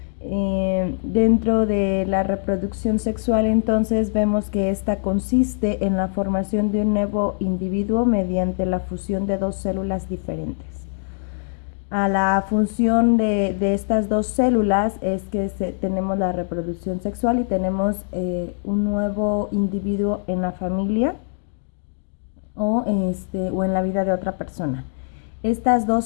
Dentro de la reproducción sexual, entonces, vemos que esta consiste en la formación de un nuevo individuo mediante la fusión de dos células diferentes. A la función de estas dos células es que tenemos la reproducción sexual y tenemos un nuevo individuo en la familia o en la vida de otra persona. Estas dos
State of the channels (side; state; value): right; silent; digital silence